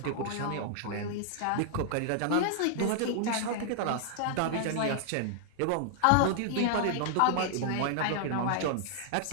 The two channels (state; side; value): different; both; correlation -0.01